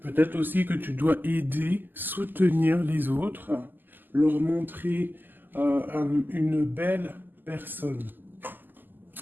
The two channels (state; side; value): late; left; 0.090 ms